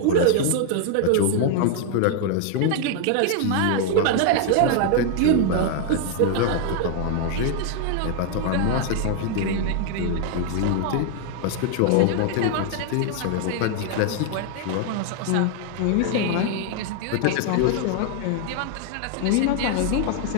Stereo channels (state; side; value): different; both; correlation 0.00